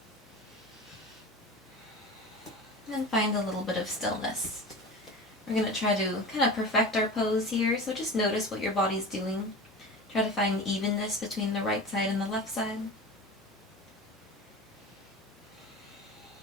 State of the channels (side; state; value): both; normal; correlation 0.32